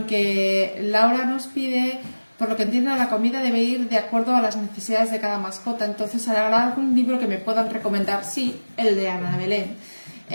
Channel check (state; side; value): inverted; both; correlation -1.00